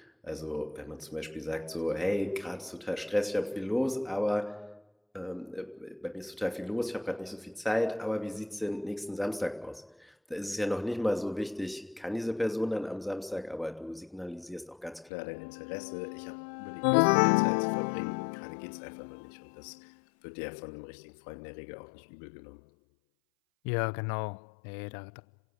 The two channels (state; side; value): drops out; right; at 15.1 s